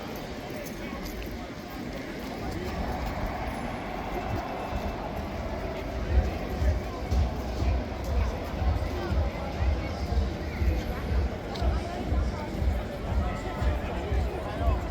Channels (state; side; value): identical; both; correlation 1.00